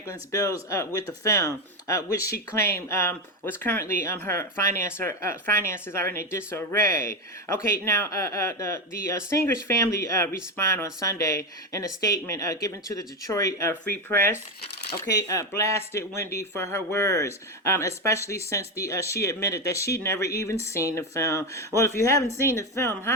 bills with the film, which she claimed was currently her finances are in a disarray. Okay, now the singer's family respond on Sunday in a statement given to the Detroit Free Press. Okay, blasted Wendy for her words, especially since she admitted that she'd never even seen the film. Well, if you haven't seen the film,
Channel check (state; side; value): normal; both; correlation 0.12